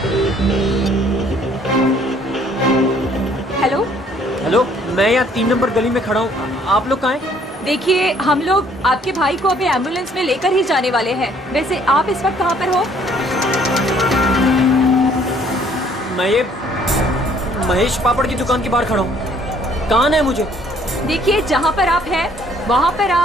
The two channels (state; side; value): normal; both; correlation 0.61